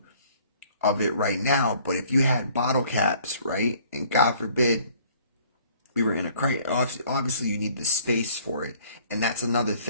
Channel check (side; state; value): both; inverted; correlation -0.57